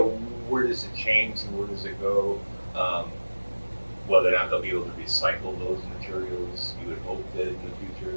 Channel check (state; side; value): inverted; both; correlation -1.00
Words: where does it change and where does it go? Whether or not they'll be able to recycle those materials, you would hope that in the